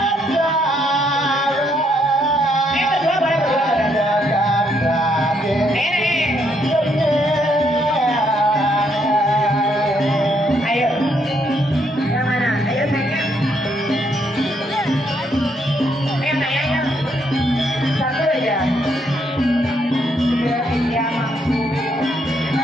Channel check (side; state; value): both; normal; correlation 0.73